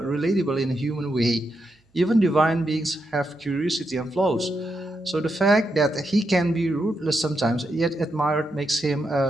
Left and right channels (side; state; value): both; normal; correlation 0.83